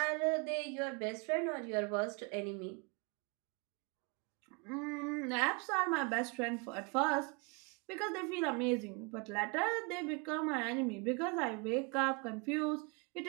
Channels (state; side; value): quieter; left; 31.4 dB